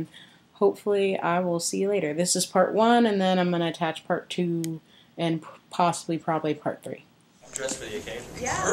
hopefully I will see you later. This is part one, and then I'm going to attach part two and possibly probably part three. Dressed for the occasion. Yeah.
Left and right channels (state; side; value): identical; both; correlation 1.00